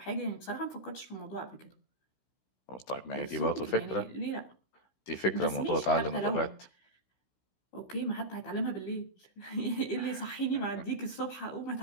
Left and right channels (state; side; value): late; right; 16 ms